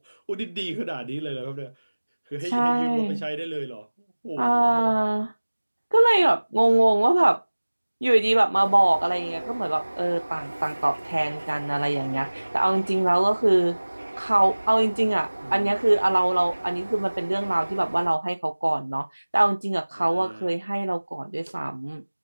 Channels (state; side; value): inverted; both; correlation -1.00